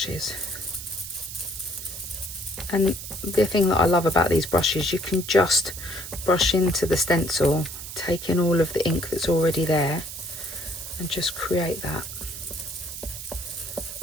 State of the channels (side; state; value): right; noise; hiss, 10 dB below the sound